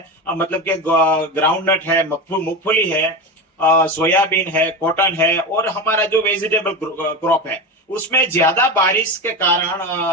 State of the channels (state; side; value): normal; both; correlation 0.21